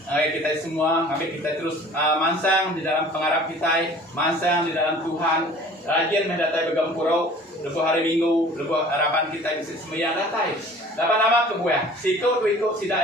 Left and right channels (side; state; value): both; normal; correlation 0.48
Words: Kita semua, kami kita terus mansang di dalam pengarap kita, mansang di dalam Tuhan, rajin mendatai begampurau, lepas hari Minggu, lepas harapan kita bisa sembahyang datai. Dapat nama kebuah. Sikut tu ikut sidak